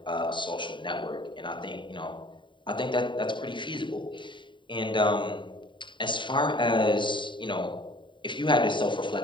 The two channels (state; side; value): late; right; 0.23 ms